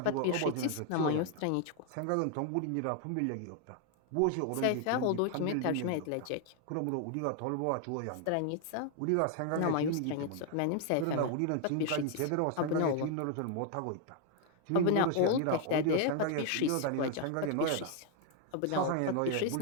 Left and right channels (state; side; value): different; both; correlation 0.00